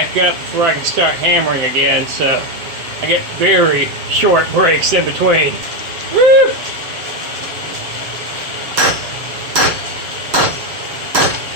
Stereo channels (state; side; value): late; left; 7.3 ms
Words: up before I can start hammering again. So I get very short breaks in between. Woo!